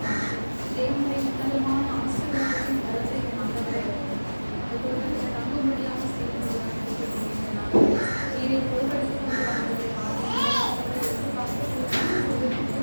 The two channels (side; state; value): both; inverted; correlation -1.00